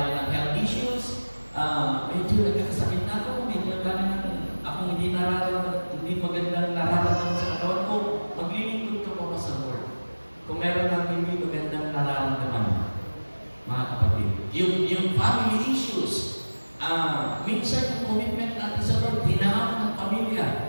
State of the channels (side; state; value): both; inverted; correlation -1.00